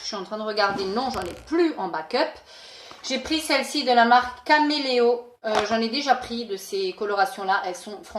suis en train de regarder. Non, j'en ai plus en backup. J'ai pris celle-ci de la marque Caméléo. J'en ai déjà pris de ces colorations-là. Elles sont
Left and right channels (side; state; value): both; identical; correlation 1.00